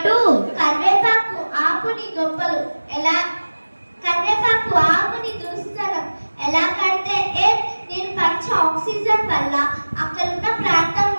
కరివేపాకు ఆకుని గొప్పలు ఎలా, కరివేపాకు ఆకుని దుస్తరం ఎలా కడితే నేను పంచ ఆక్సిజన్ వల్ల అక్కడున్న ప్రాంతం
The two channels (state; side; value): inverted; both; correlation -1.00